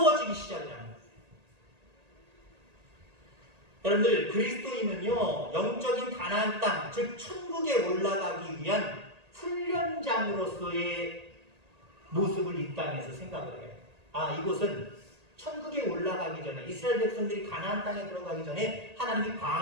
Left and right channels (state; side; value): late; left; 1.8 ms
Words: 시작하는 거예요. 여러분들, 그리스도인은요 영적인 가나안 땅, 즉 천국에 올라가기 위한 훈련장으로서의 모습을 이 땅에서 생각을 해요. 아, 이곳은 천국에 올라가기 전에, 이스라엘 백성들이 가나안 땅에 들어가기 전에 하나님이